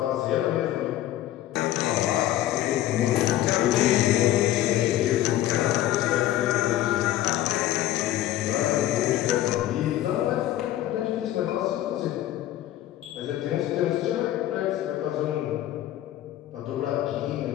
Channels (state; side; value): quieter; right; 13.6 dB